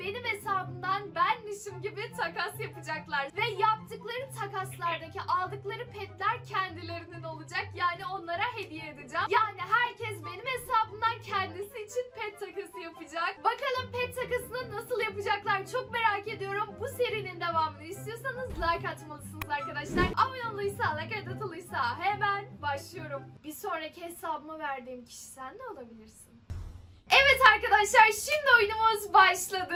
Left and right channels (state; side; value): identical; both; correlation 1.00